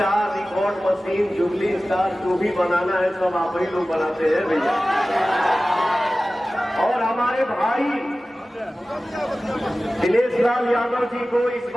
record machine jubilee star जो भी बनाना है सब आप ही लोग बनाते हैं भैया। और हमारे भाई दिनेश लाल यादव जी को इस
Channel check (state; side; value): normal; both; correlation 0.96